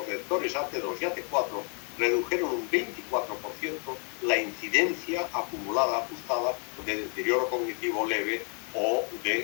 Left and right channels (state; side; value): quieter; right; 39.2 dB